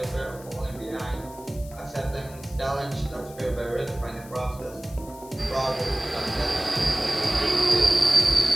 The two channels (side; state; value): left; noise; hiss, 20 dB below the sound